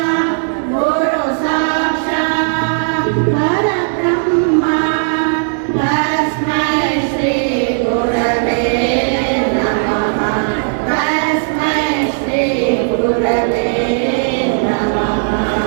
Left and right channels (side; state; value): left; silent; 66 dB below the other